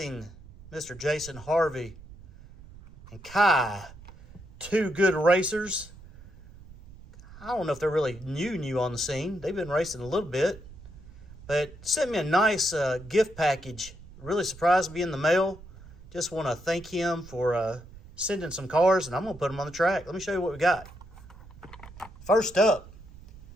Mr. Jason Harvey and Kai. Two good racers. I don't know if they're really new on the scene. They've been racing a little bit. But sent me a nice gift package. Really surprised me in the mail. Just want to thank him for sending some cars, and I'm going to put them on the track. Let me show you what we got. First up,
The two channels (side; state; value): right; noise; rumble, 19 dB below the sound